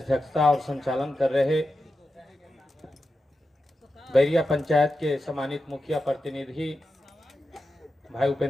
और संचालन कर रहे बैरिया पंचायत के सम्मानित मुखिया प्रतिनिधि भाई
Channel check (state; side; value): normal; both; correlation 0.90